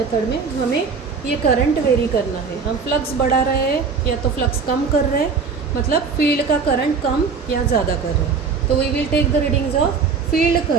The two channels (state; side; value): quieter; left; 5.4 dB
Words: में हमें ये करंट वेरी करना है. हम फ्लक्स बढ़ा रहे हैं या तो फ्लक्स कम कर रहे हैं, मतलब फील्ड का करंट कम या ज़्यादा कर रहे हैं. तो we will take the readings of field